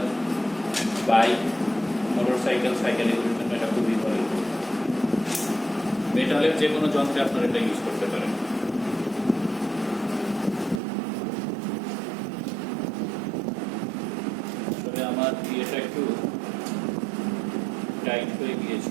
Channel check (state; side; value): drops out; left; at 10.8 s